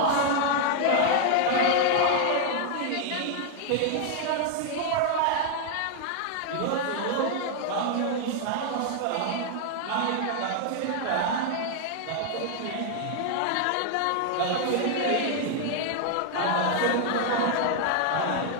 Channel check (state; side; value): different; both; correlation 0.00